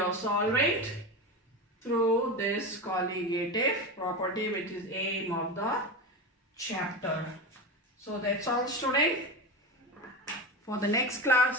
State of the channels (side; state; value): both; normal; correlation 0.22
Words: solvent through this colligative property, which is aim of the chapter. So that's all, student. For the next